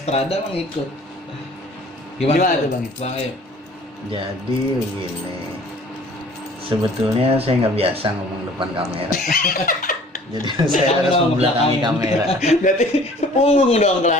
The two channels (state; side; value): normal; both; correlation 0.51